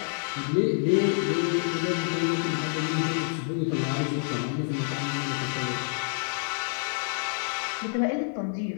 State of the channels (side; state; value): right; silent; digital silence